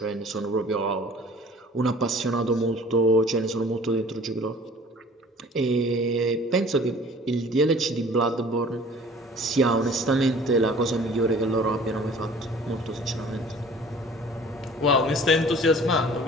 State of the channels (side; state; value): both; normal; correlation 0.49